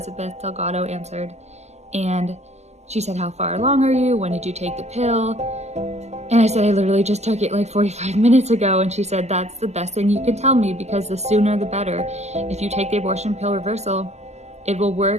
Delgado answered. And she said, how far along are you? When did you take the pill? And I said, I literally just took it like 45 minutes ago. And she said, that's the best thing you can tell me, because the sooner the better. If you take the abortion pill reversal, it will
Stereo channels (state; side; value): late; left; 0.33 ms